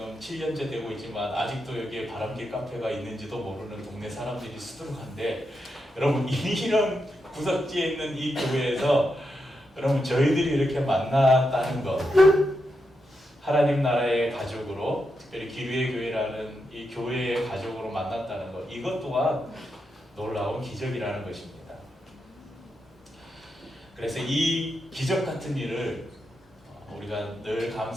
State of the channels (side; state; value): both; normal; correlation 0.85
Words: 7년째 되고 있지만 아직도 여기에 바람길 카페가 있는지도 모르는 동네 사람들이 수두룩한데, 여러분 이런 구석지에 있는 이 교회에서 여러분 저희들이 이렇게 만났다는 것, 하나님 나라의 가족으로, 특별히 기류의 교회라는 이 교회의 가족으로 만났다는 것, 이것 또한 놀라운 기적이라는 것입니다. 그래서 이 기적 같은 일을 우리가 늘